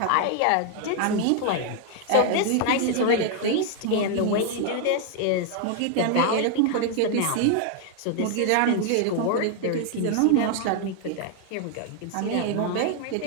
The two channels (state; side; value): different; both; correlation 0.00